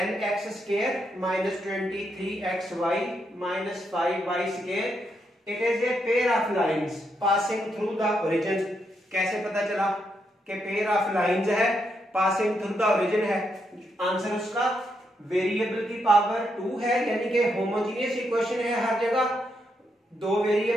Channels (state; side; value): normal; both; correlation 0.80